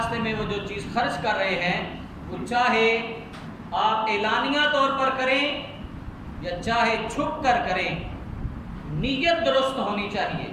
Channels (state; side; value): identical; both; correlation 1.00